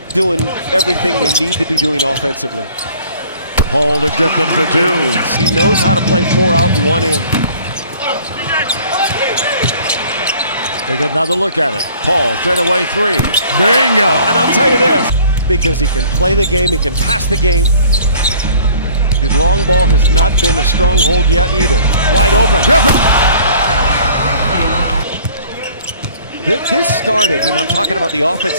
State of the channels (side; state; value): both; inverted; correlation -0.52